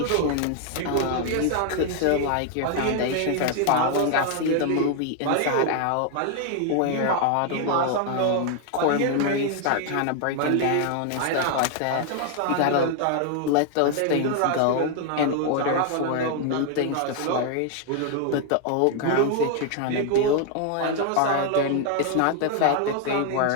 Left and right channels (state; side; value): different; both; correlation 0.00